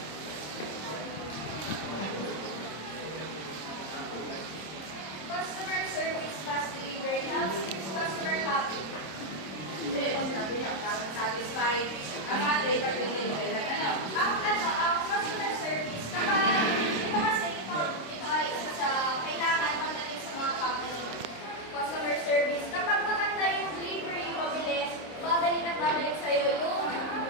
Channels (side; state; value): right; late; 26 ms